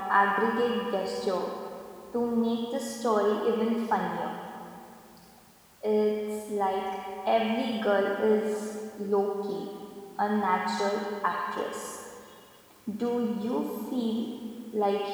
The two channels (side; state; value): both; identical; correlation 1.00